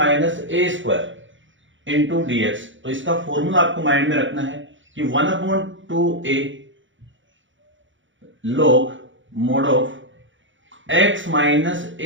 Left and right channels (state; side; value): late; left; 0.56 ms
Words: a square into d x. तो इसका फॉर्मूला आपको माइंड में रखना है कि 1/2a log mod of x minus